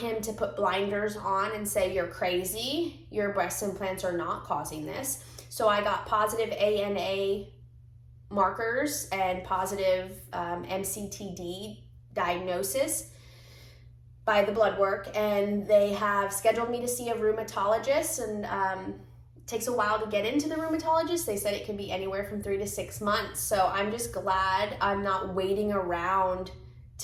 to put blinders on and say, you're crazy, your breast implants are not causing this. So I got positive ANA markers and positive MCTD diagnosis by the blood work, and they have scheduled me to see a rheumatologist, and it takes a while to get into the rheumatologist. They said it can be anywhere from 3 to 6 months. So I'm just glad I'm not waiting around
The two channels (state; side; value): identical; both; correlation 1.00